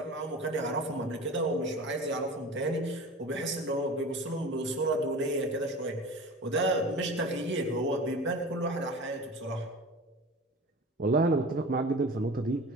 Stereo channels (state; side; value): normal; both; correlation 0.36